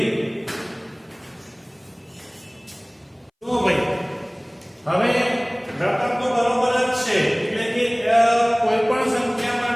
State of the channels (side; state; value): both; identical; correlation 1.00